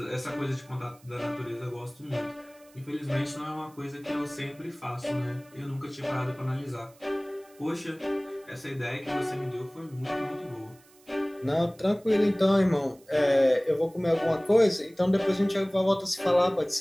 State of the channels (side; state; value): right; noise; hiss, 28 dB below the sound